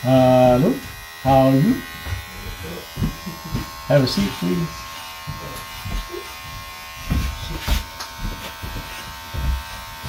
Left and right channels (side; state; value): both; identical; correlation 1.00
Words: Hello, how are you? Have a seat, please.